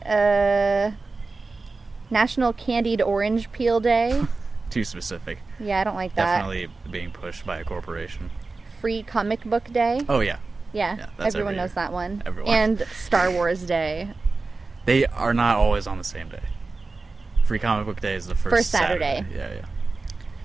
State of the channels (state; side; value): quieter; left; 3.8 dB